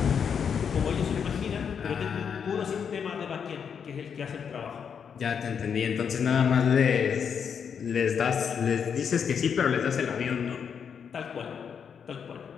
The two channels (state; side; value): quieter; right; 7.1 dB